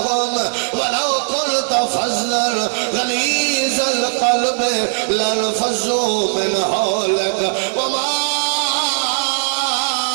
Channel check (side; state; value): left; silent; digital silence